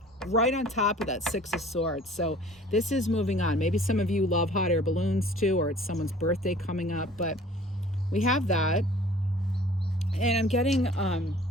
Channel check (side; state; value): both; normal; correlation 0.49